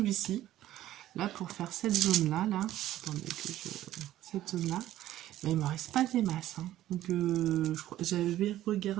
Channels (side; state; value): left; quieter; 13.7 dB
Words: Là, pour faire cette zone-là, là. Attendez que je. Cette zone-là. Mais il me reste pas des masses. Hein. Donc j'avais